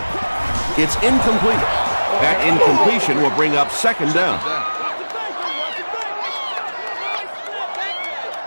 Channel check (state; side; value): inverted; both; correlation -1.00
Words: It's incomplete. That incompletion will bring up second down.